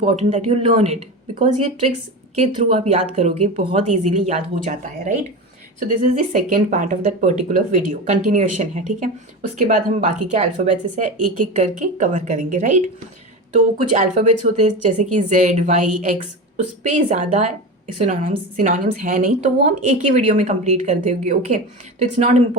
that you learn it, because ये ट्रिक्स के थ्रू आप याद करोगे, बहुत इजीली याद हो जाता है, right. So this is the second part of that particular video, continuation है, ठीक है। उसके बाद हम बाकी के अल्फ़ाबेट्स से एक एक करके कवर करेंगे, राइट। तो कुछ अल्फ़ाबेट्स होते हैं जैसे कि Z, Y, X, उस पर ज़्यादा सिनोनिम्स है नहीं, तो वो हम एक ही वीडियो में कंप्लीट कर देंगे। ओके, तो इट्स नॉट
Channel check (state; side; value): normal; both; correlation 0.25